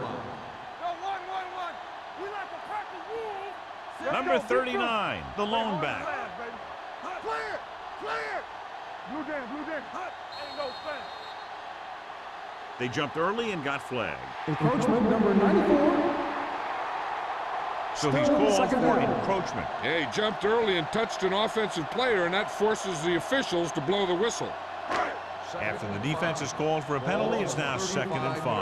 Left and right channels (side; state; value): both; identical; correlation 1.00